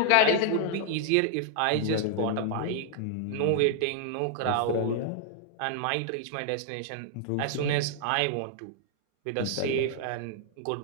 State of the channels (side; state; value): both; different; correlation -0.01